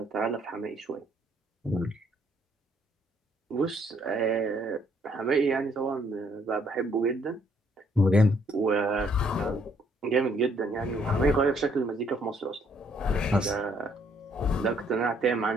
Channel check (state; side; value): normal; both; correlation 0.67